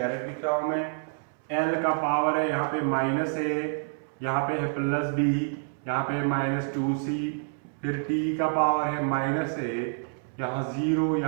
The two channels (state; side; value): silent; left; 59 dB below the other